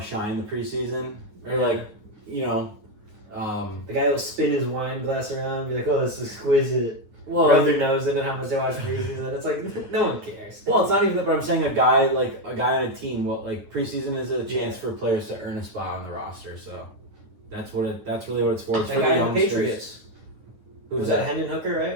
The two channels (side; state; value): left; late; 9.7 ms